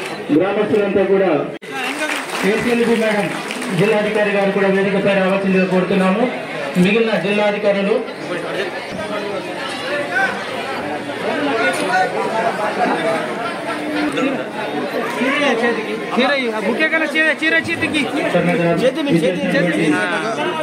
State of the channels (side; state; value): both; identical; correlation 1.00